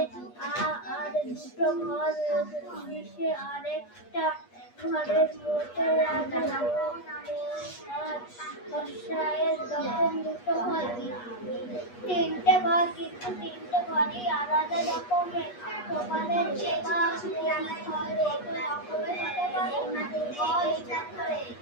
আর দুটো ঘর মিশে আরেকটা ঘরের মধ্যে লাগানো বর্ষায়ের তখন দুটো ঘর, তিনটে ঘর, কিন্তু তিনটে ঘরই আলাদা রকমের। তোমাদের যে ঘর রকমের হতে পারে,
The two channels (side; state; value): right; late; 8.3 ms